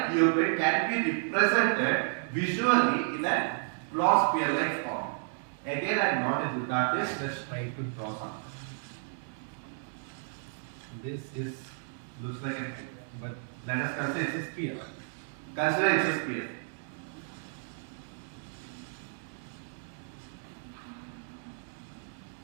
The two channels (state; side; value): silent; left; digital silence